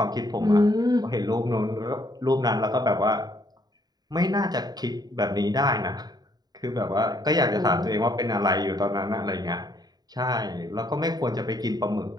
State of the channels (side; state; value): left; late; 0.19 ms